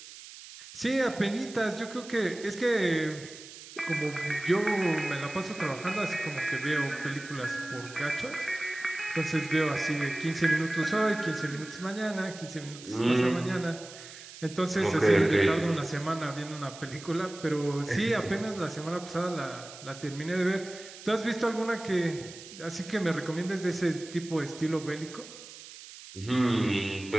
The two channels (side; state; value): right; noise; hiss, 15 dB below the sound